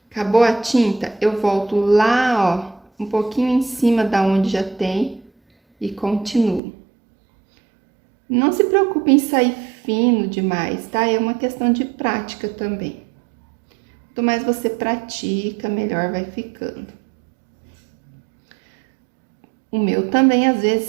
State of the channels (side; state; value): left; drops out; at 6.6 s